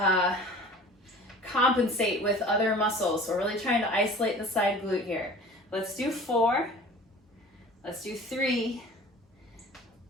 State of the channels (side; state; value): both; normal; correlation 0.43